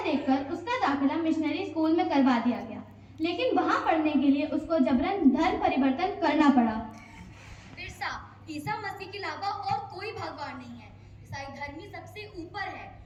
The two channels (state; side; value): identical; both; correlation 1.00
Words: देखकर उसका दाखिला मिशनरी स्कूल में करवा दिया गया, लेकिन वहाँ पढ़ने के लिए उसको जबरन धर्म परिवर्तन करना पड़ा। बिरसा, ईसा मसीह के अलावा और कोई भगवान नहीं है। ईसाई धर्म ही सबसे ऊपर है